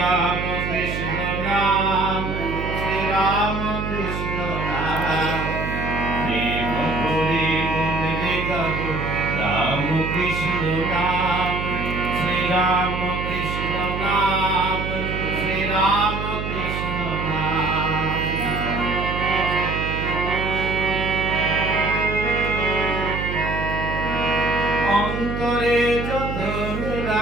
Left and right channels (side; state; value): right; noise; hum, 4 dB below the sound